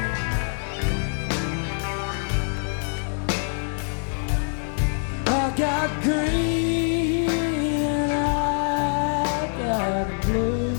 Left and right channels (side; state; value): right; silent; 62 dB below the other